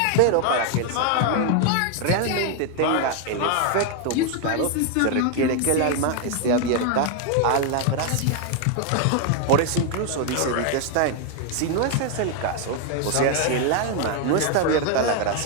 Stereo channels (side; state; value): both; different; correlation 0.01